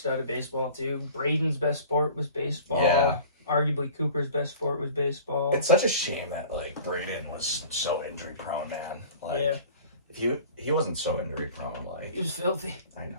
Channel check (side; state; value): both; inverted; correlation -0.43